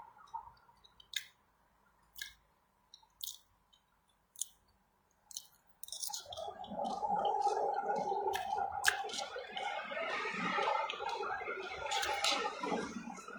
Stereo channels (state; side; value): identical; both; correlation 1.00